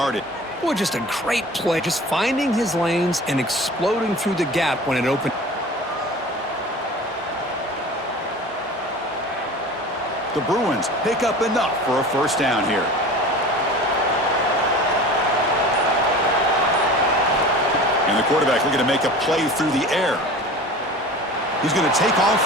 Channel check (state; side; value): normal; both; correlation 0.39